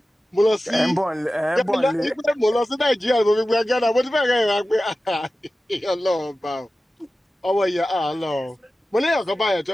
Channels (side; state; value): both; normal; correlation 0.95